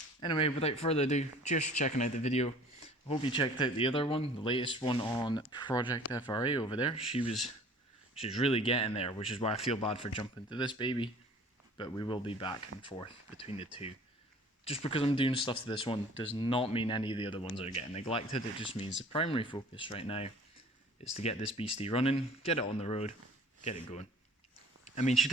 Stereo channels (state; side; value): normal; both; correlation 0.49